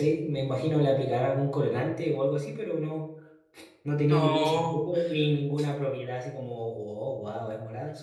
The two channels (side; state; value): both; identical; correlation 1.00